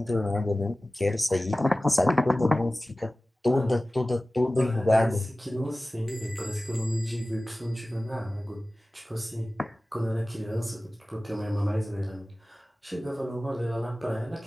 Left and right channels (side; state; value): both; normal; correlation 0.97